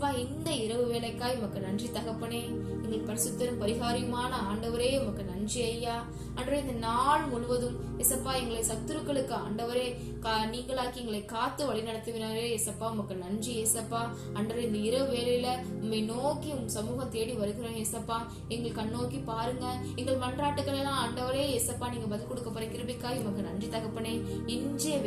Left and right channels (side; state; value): both; identical; correlation 1.00